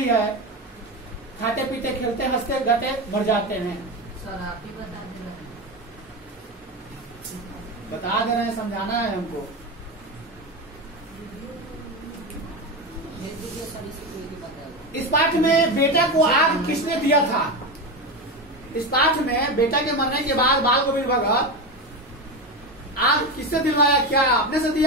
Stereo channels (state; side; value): normal; both; correlation 0.18